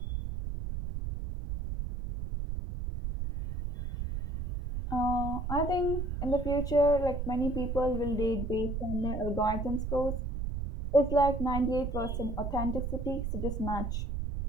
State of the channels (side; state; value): right; noise; rumble, 3 dB below the sound